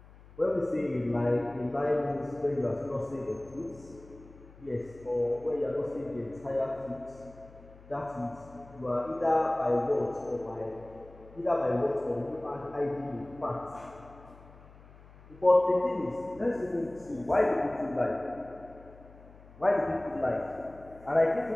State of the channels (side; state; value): left; noise; hum, 22 dB below the sound